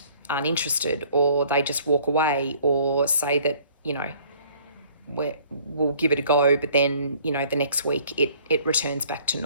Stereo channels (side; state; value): both; inverted; correlation -0.57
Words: aren't interested, or they just walk away, or say that we'll give it a go, but then the next week it returns back to